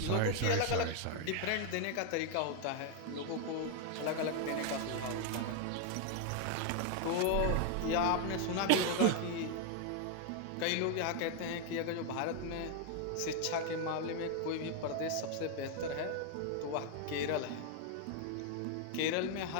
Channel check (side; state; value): both; different; correlation 0.01